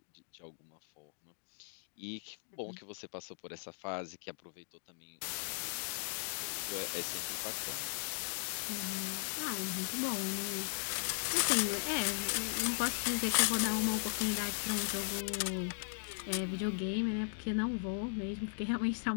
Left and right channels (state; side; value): silent; right; digital silence